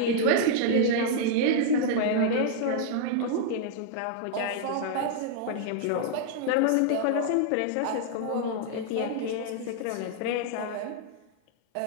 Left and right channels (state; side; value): different; both; correlation -0.01